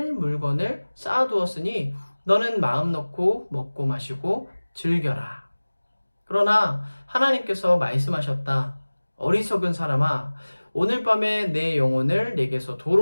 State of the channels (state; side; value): inverted; both; correlation -1.00